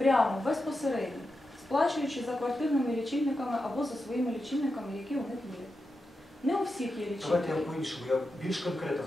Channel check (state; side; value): normal; both; correlation 0.89